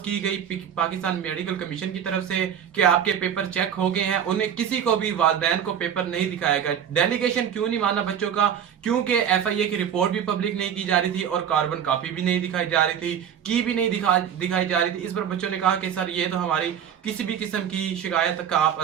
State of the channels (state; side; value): quieter; left; 8.8 dB